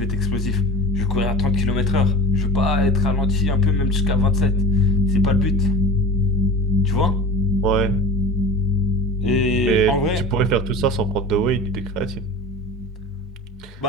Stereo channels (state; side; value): normal; both; correlation 0.33